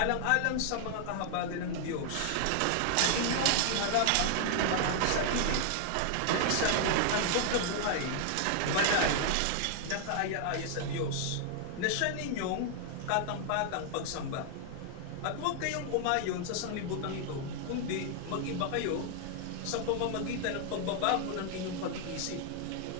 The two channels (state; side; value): different; both; correlation 0.00